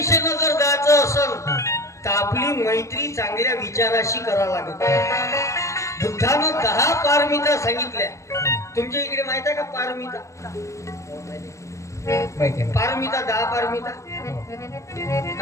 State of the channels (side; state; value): right; late; 0.15 ms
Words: जर जायचं असेल तर आपली मैत्री चांगल्या विचाराशी करावं लागत बुद्धानं 10 पारमिता सांगितल्या तुमच्या इकडे माहित आहे का पारमिता माहिती आहे. पारमिता 10 पारमिता